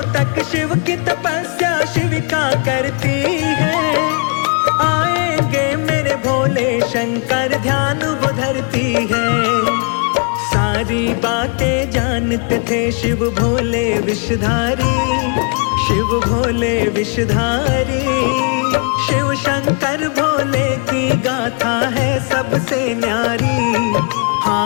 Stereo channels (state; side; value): quieter; right; 37.4 dB